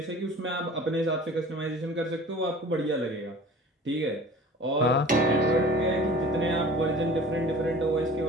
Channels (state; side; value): normal; both; correlation 0.43